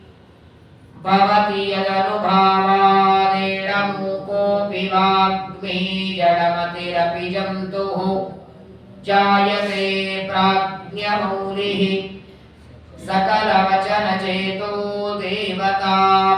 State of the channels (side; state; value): both; identical; correlation 1.00